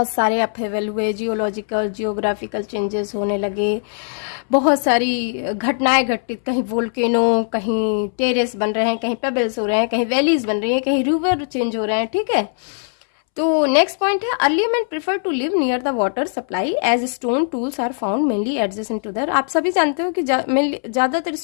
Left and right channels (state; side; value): silent; right; 66 dB below the other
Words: सारे अपहेवल हुए, जियोलॉजिकल जियोग्राफिकल चेंजेस होने लगे, बहुत सारी घटनाएं घटित, कहीं वोल्केनो, कहीं टेरेस बन रहे हैं, कहीं पेबल्स हो रहे हैं, कहीं वैलीज बन रही हैं, कहीं रिवर चेंज हो रहे हैं। ठीक है, तो नेक्स्ट पॉइंट है early man prefer to live near the water supply as stone tools are found mainly adjacent to there. आप सभी जानते हो कि ज्यादातर